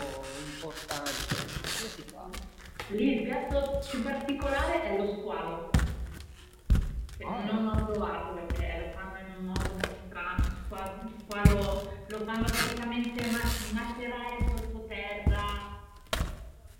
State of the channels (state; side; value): identical; both; correlation 1.00